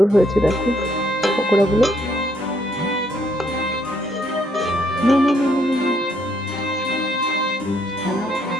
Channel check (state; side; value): normal; both; correlation 0.70